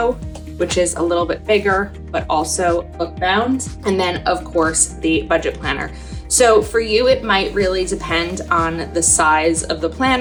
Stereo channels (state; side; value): identical; both; correlation 1.00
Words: which is a little bit bigger, but also book bound. And then of course the budget planner. So for you, it might really depend on the size of the